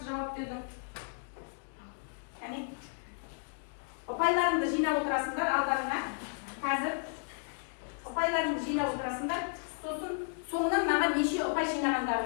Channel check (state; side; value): silent; right; 56 dB below the other